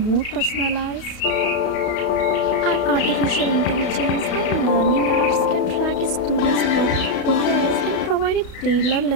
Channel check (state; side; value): late; right; 32 ms